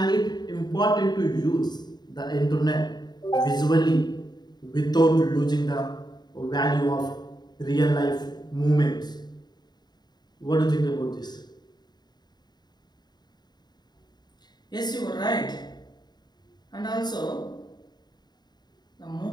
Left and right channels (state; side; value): late; right; 0.20 ms